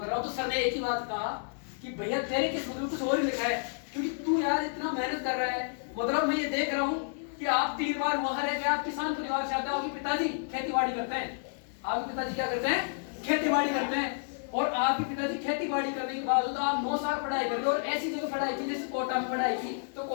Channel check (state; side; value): silent; right; 57 dB below the other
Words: रहा हूँ। तो सर ने एक ही बात कहा कि भैया तेरे किस्मत में कुछ और ही लिखा है, क्योंकि तू यार इतना मेहनत कर रहा है, मतलब मैं ये देख रहा हूँ कि आप 3 बार वहां रह गए, आप किसान परिवार से आते हो, आपके पिताजी खेती-बाड़ी करते हैं, आपके पिताजी क्या करते हैं, खेती-बाड़ी करते हैं, और आपके पिताजी खेती-बाड़ी करने के बाद आप 9 साल पढ़ाई कर रहे हो, और ऐसी जगह पढ़ाई की जैसे कोटा में पढ़ाई की, तो